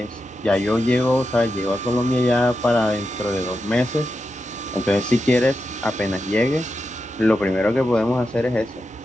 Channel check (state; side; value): normal; both; correlation 0.89